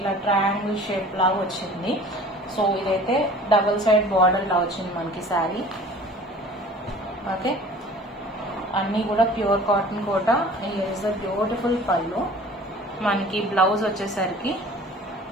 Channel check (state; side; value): normal; both; correlation 0.46